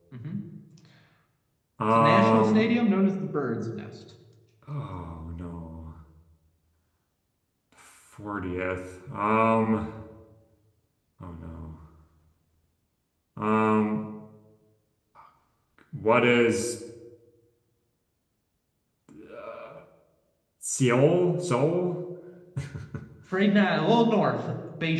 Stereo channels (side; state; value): both; identical; correlation 1.00